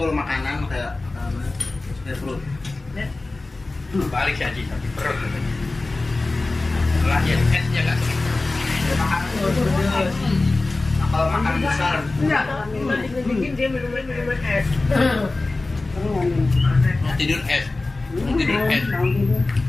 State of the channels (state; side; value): quieter; right; 3.2 dB